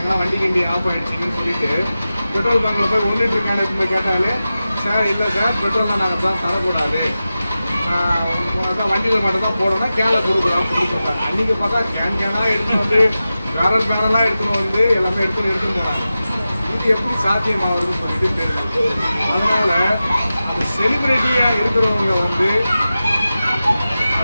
வண்டி கிண்டி ஆஃப் ஆகிடுச்சின்னு சொல்லிட்டு பெட்ரோல் பங்கில் போய் 1 லிட்டர் கேனுக்கு போய் கேட்டாலே, சார் இல்லை சார் பெட்ரோல் நாங்கள் தான் தரக்கூடாது, வண்டிகள் மட்டும் தான் போடணும், கேனை கொடுக்குறோம் அப்படின்னு சொல்லிட்டாங்க. அன்றைக்கி பார்த்தா கேனாக எடுத்துன்னு பேரலாக எடுத்துன்னு எல்லாமே எடுத்துன்னு போனாங்க. இது எப்படி சாத்தியமாகுதுன்னு சொல்லிட்டு தெரியல. அதனால் அந்த செலிபிரிட்டியாக இருக்கிறவங்க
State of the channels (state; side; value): inverted; both; correlation -0.94